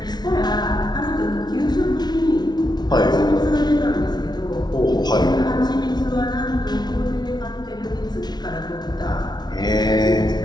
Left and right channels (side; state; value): right; late; 0.20 ms